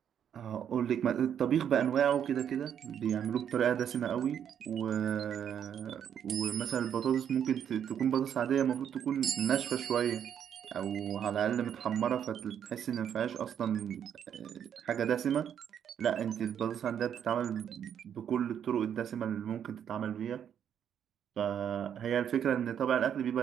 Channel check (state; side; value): quieter; left; 8.9 dB